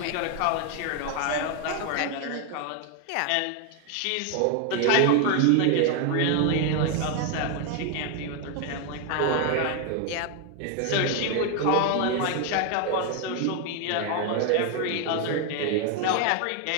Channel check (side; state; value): both; different; correlation 0.01